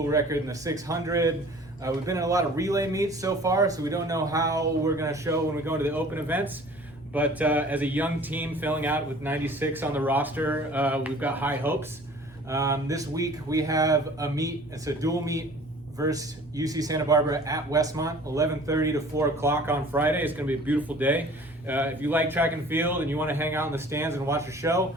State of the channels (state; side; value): normal; both; correlation 0.48